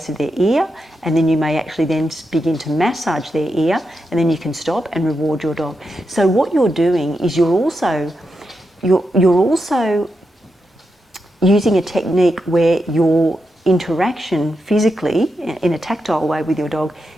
of their ear, and then you may actually then begin to massage their ear, and then you can stop and reward your dog. So what you're doing is you're also using a technique where your interaction physically in a tactile way with your dog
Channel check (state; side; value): normal; both; correlation 0.86